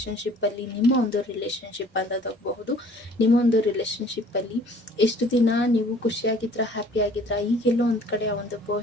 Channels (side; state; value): both; normal; correlation 0.53